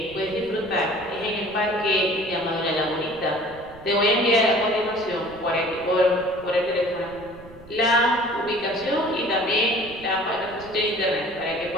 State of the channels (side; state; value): right; noise; rumble, 20 dB below the sound